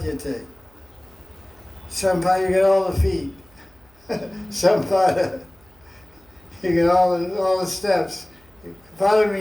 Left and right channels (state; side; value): noise; right; hum, 29 dB below the sound